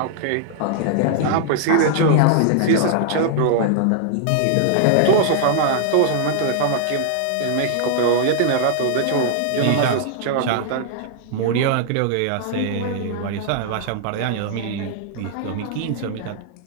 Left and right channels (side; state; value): both; different; correlation -0.01